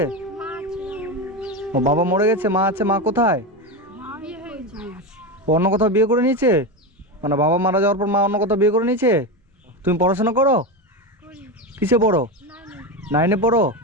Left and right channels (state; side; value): normal; both; correlation 0.17